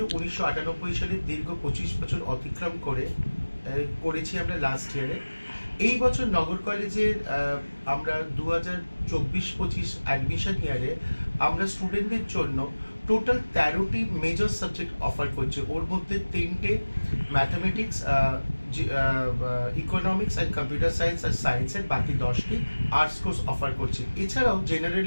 1998 সালে। দীর্ঘ 25 বছর অতিক্রম করেছি আমরা লাস্ট ইয়ারে। এই বছর নগর কলেজের আমরা 2024-25 অ্যাডমিশন ইয়ারে আমরা স্টুডেন্টদের জন্য টোটাল 13টি মেজর সাবজেক্ট অফার করছে। ওর মধ্যে 3টে mathematics, economics and computer science আর সায়েন্সের, বাকি 10টি আর্টস কোর্স অফার করছে। এছাড়াও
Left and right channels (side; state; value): both; inverted; correlation -1.00